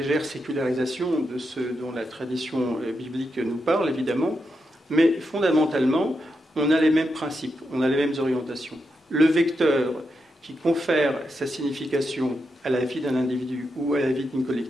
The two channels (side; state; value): both; normal; correlation 0.85